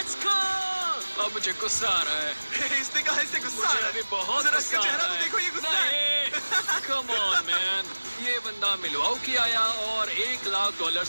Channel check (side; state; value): both; inverted; correlation -1.00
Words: go. अब मुझे गुस्सा आ रहा है। इसने कहा इससे गुस्सा आ मुझे रहा अभी है। बहुत जरा गुस्सा इसका आ चेहरा रहा तो है। देखो, ये गुस्सा है। कम ऑन मैन, ये बंदा मिलवाउकी आया और $1 लाख